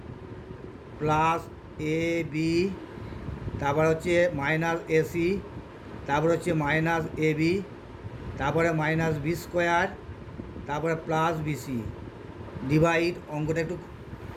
প্লাস এ বি, তারপর হচ্ছে মাইনাস এসি, তারপর হচ্ছে মাইনাস এ বি, তারপরে মাইনাস বি স্কোয়ার, তারপরে প্লাস বিসি ডিভাইড, অঙ্কটা একটু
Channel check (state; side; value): identical; both; correlation 1.00